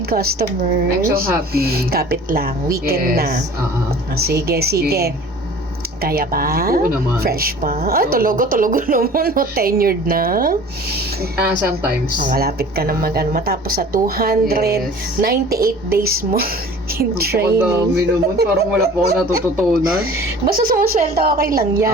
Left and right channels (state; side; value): normal; both; correlation 0.45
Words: customers. I'm so happy. Kapit lang. Weekend Yes. na. Sige. Kaya pa? Oo naman. Fresh pa? Ay, Oo. tulogo naman. No, tenured na. Sometimes. Malapit ka na matapos sa 298 days mo in Ang training. dami naman. Parang wala po ako natututunan. Basta sumusweldo, okay lang